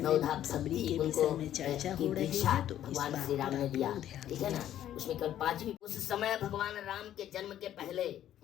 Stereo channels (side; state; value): right; quieter; 11.6 dB